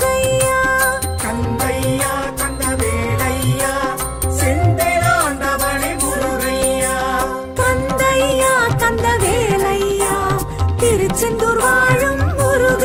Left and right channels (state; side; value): identical; both; correlation 1.00